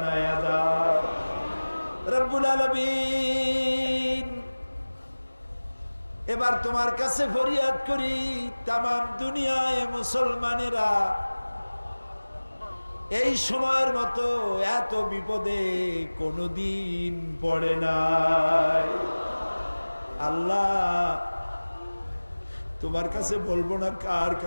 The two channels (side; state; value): both; inverted; correlation -1.00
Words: দাও রব্বুল আলামিন। এবার তোমার কাছে ফরিয়াদ করি, তামাম দুনিয়ায় মুসলমানেরা এই সময়ের মতো এত বিপদে কোনদিন পড়ে নাই। আল্লাহ তোমার কাছে বলবো না কার